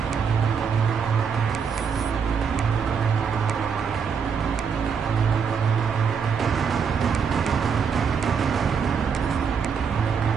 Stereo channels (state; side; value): quieter; left; 6.4 dB